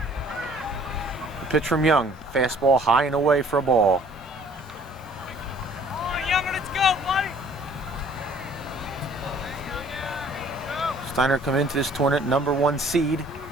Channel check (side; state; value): both; normal; correlation 0.56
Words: The pitch from Young. Fastball high and away for a ball. Steinert come into this tournament #1 seed.